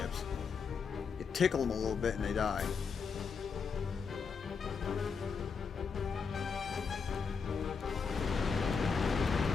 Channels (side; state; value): right; quieter; 5.6 dB